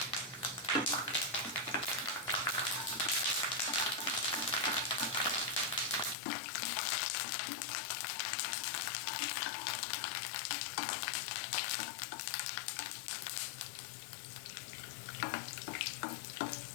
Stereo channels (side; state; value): right; drops out; at 6.2 s